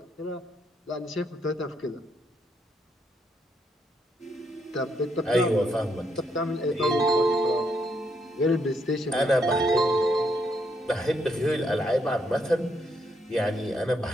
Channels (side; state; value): both; normal; correlation 0.75